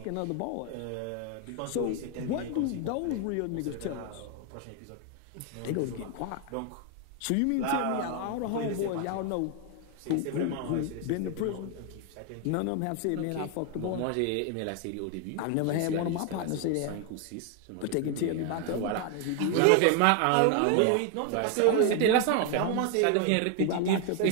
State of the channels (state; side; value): different; both; correlation 0.01